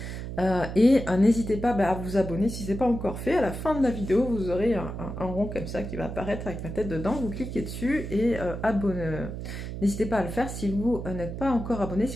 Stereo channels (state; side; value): noise; right; hum, 7 dB below the sound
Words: N'hésitez pas à vous abonner si ce n'est pas encore fait. À la fin de la vidéo, vous aurez un rond comme ça qui va apparaître avec ma tête dedans. Vous cliquez dessus et abonnez. N'hésitez pas à le faire si vous n'êtes pas encore abonné,